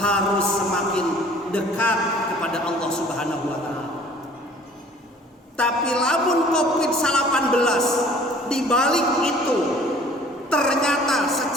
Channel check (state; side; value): normal; both; correlation 0.51